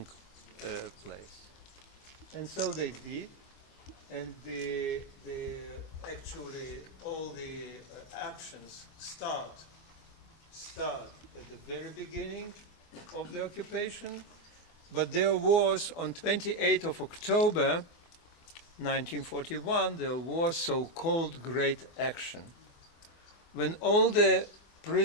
place. And so they did. And actually all the actions start at the very beginning of the occupation, but there was on 28th of October 1941, there was so-called Great Action, when all the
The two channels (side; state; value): right; late; 24 ms